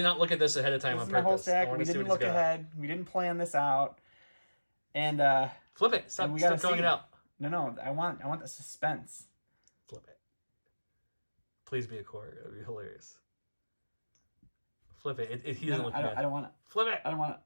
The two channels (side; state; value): both; inverted; correlation -1.00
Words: not look at this ahead of time This on is my purpose. whole stack. I want We to see didn't what he's look got. ahead. We didn't plan this out. And Flip it. Stop gotta throwing see. it out. No. I want the suspense. Flip it. Please be a core. It would be hilarious. Flip it. He doesn't look bad. I don't want it. Flip it. I don't want